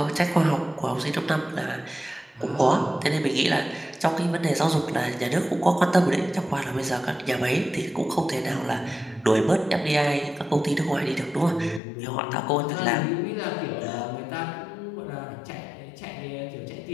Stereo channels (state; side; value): drops out; right; at 11.8 s